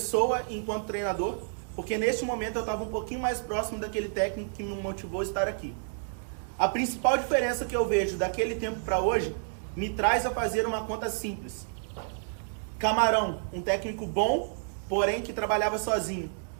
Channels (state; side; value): silent; left; digital silence